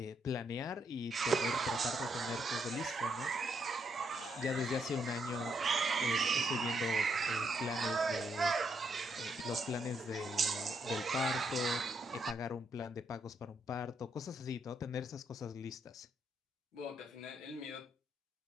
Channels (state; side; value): normal; both; correlation 0.76